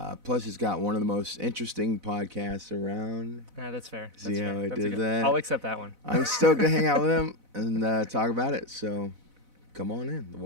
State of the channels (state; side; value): late; left; 4.0 ms